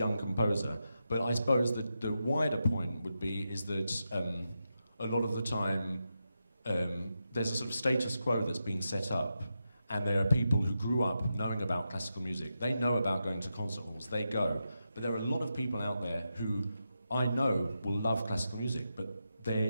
composer. But I suppose that the wider point would be is that a lot of the time there's a sort of status quo that's been set up, and there are people who grew up knowing about classical music. They know about going to concert halls. They go, but there are a lot of people out there who I know will love classical music, but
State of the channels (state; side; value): inverted; both; correlation -0.87